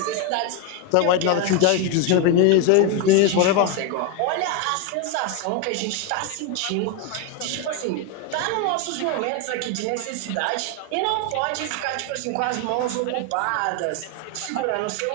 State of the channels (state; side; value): different; both; correlation 0.01